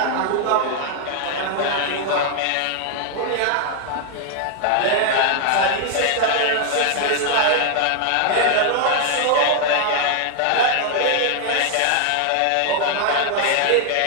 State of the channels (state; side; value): different; both; correlation 0.00